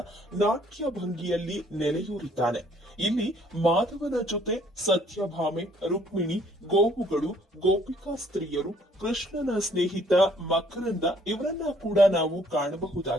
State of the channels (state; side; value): normal; both; correlation 0.62